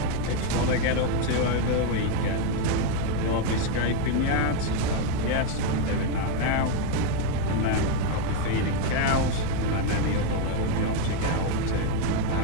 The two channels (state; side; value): different; both; correlation 0.01